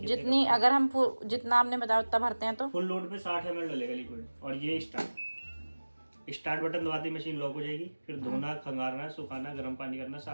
जितनी अगर हम जितना आपने बताया उतना भरते हैं तो फुल लोड पे 60 ml डलेगा लिक्विड। और ये स्टार्ट बटन दबाते ही मशीन लॉक हो जाएगी। फिर धोना, खंगारना, सुखाना, गर्म पानी करना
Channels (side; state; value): both; inverted; correlation -1.00